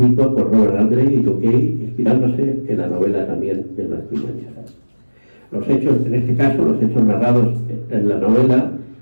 por Robert Andre y Joe Kay, inspirándose en la novela también de Blasco Umaña. Los hechos, en este caso, los hechos narrados en la novela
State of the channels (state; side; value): inverted; both; correlation -1.00